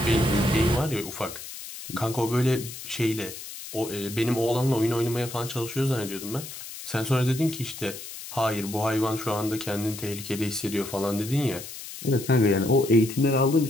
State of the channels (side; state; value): left; noise; hiss, 11 dB below the sound